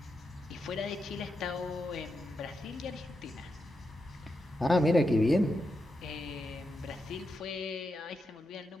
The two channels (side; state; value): both; normal; correlation 0.86